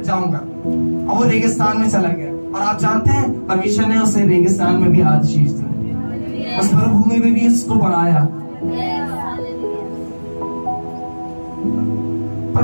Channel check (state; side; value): inverted; both; correlation -1.00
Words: जाऊंगा, और वो रेगिस्तान में चला गया। और आप जानते हैं परमेश्वर ने उसे रेगिस्तान में भी आशीष दी, उस मरुभूमि में भी उसको बढ़ाया।